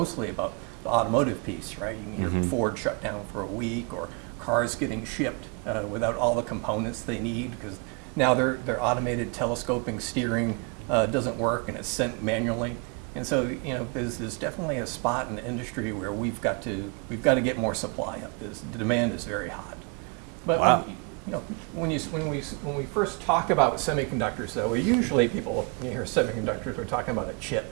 about the automotive piece, right? You can hear Ford shut down for a week, or cars getting shipped without all the components they need, because now their automated telescoping steering doesn't work and it's sent manually. And so, there's definitely a spot in the industry where we've got to get more supply up. The demand is very hot. But wow. when we first talk about semiconductors, though, usually people, you hear semiconductors, we're talking about a chip.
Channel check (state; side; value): quieter; left; 34.3 dB